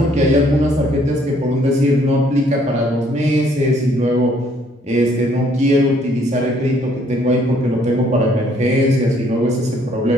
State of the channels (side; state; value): both; normal; correlation 0.64